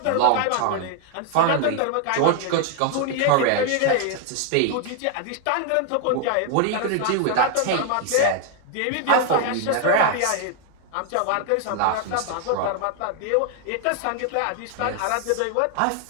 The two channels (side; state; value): both; different; correlation 0.00